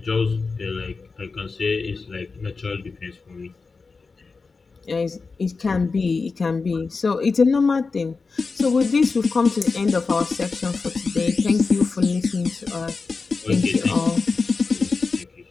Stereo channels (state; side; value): quieter; right; 4.4 dB